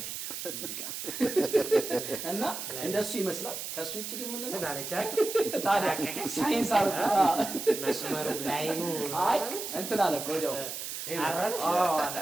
ፊት ሙዚቃ እና እንደሱ ይመስላል። ከሱ ውጪ ግን ምንድን ነው ታዲያ ሳይንስ አርጋ መስመሩ ላይ ነው እንትን አለ እኮ ወዲያው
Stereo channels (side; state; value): right; noise; hiss, 6 dB below the sound